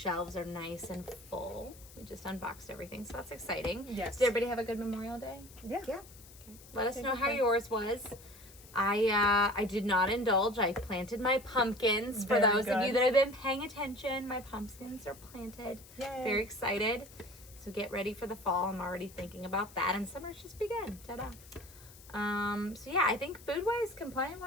are nice and full. We just unboxed everything, so that's exciting. Yes. Did everybody have a good Memorial Day? Yeah. Let us know how yours was. I did not indulge. I planted my pumpkins. For Very those of you good. that have been paying attention, my pumpkins are planted. Yay. Very excited. So get ready for the fall. I'm already thinking about that. And summer's just begun. Ta-da. So yeah, I think food-wise,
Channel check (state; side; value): noise; left; hiss, 21 dB below the sound